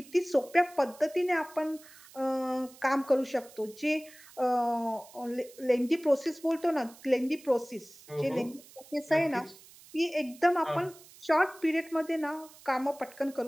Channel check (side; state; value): right; noise; hiss, 22 dB below the sound